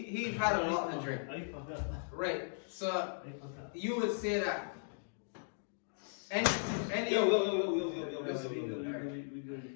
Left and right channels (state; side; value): silent; right; digital silence